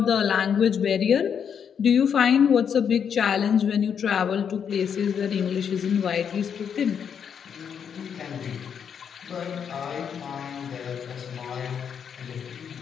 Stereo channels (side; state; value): right; quieter; 7.6 dB